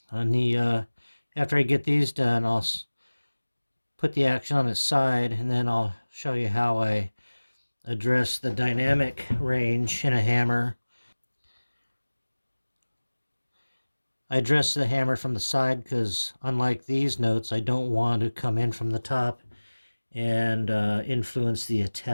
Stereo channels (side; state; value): both; inverted; correlation -1.00